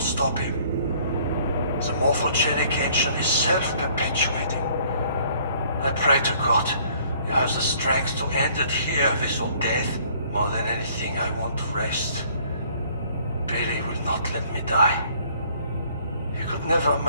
stop him. The morphogenic ancient is self-perpetuating. I pray to God you have the strength to end it here with your death. More than anything, I want to rest. Billy will not let me die. He could never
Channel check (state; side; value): inverted; both; correlation -0.59